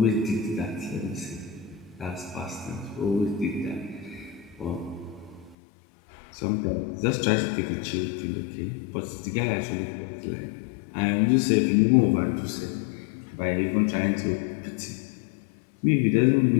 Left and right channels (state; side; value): drops out; right; at 5.6 s